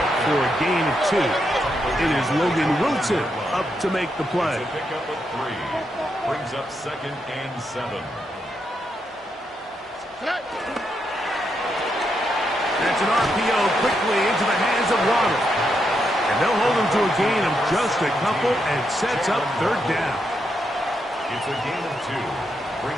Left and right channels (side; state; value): both; normal; correlation 0.81